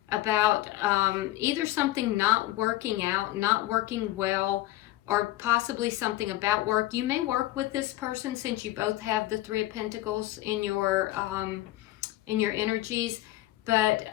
about either something not working out, not working well, or possibly something about work. You may work with this person since you both have the Three of Pentacles in your energies. But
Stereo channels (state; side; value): quieter; right; 16.1 dB